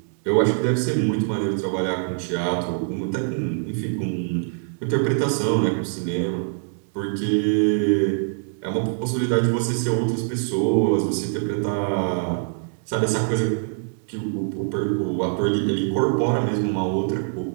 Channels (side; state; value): left; silent; digital silence